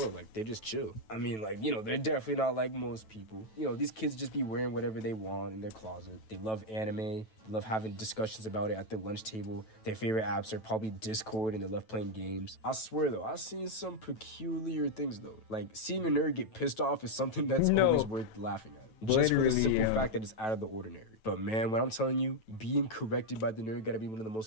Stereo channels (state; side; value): late; right; 9.1 ms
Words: Like, they just chill. I mean, like, they're definitely not like most people. These kids just be wearing whatever they want in their closet. They love anime. Love having discussions about it at their lunch table. Their favorite apps are probably Discord, and they love playing games. I swear, though, I've seen some peculiar things, though. Like, seeing a nerd get pissed off is something that's always worth laughing at. Just for the simple fact that it's out of the ordinary. But man, when I'm telling you, being corrected by the nerd gotta be one of the